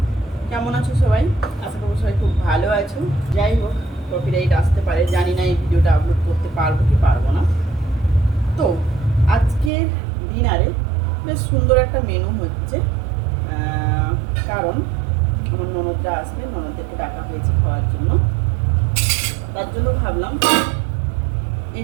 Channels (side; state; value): left; drops out; at 9.7 s